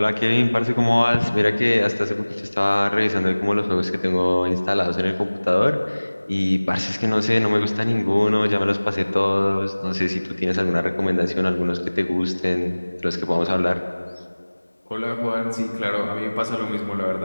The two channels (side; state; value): both; inverted; correlation -1.00